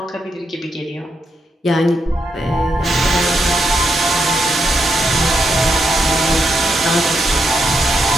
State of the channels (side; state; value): both; normal; correlation 0.81